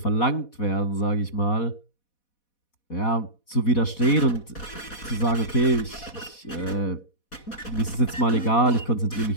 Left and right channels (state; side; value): late; right; 4.1 ms